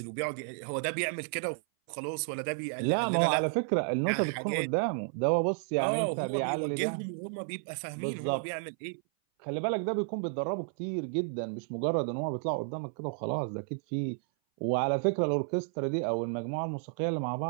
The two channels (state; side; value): silent; left; 57 dB below the other